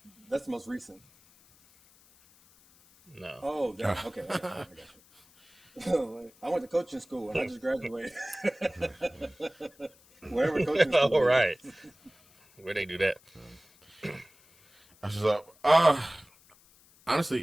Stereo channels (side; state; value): left; noise; hiss, 28 dB below the sound